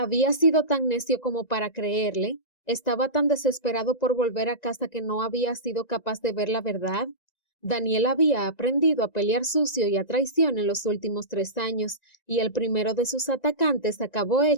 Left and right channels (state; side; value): late; right; 1.9 ms